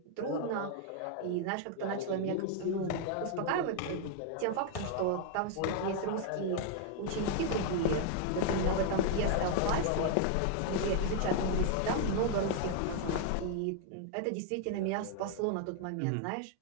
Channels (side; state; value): both; different; correlation 0.00